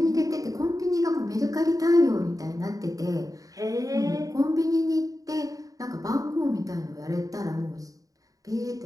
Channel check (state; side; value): late; left; 0.17 ms